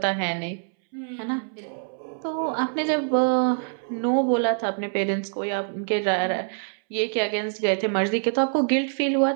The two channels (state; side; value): silent; left; 62 dB below the other